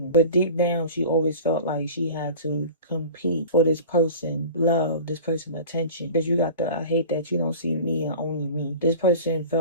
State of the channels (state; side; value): inverted; both; correlation -0.38